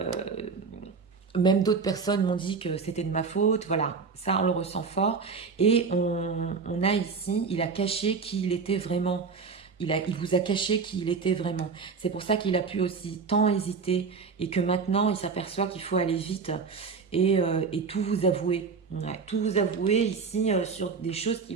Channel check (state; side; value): quieter; left; 5.2 dB